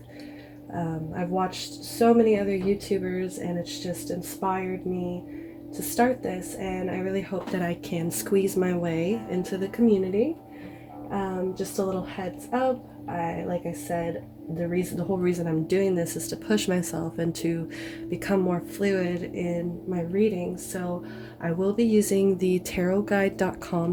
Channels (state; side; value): identical; both; correlation 1.00